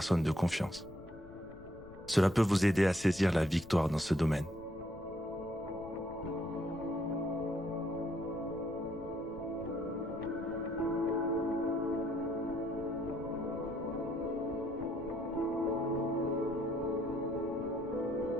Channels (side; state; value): left; noise; rumble, 19 dB below the sound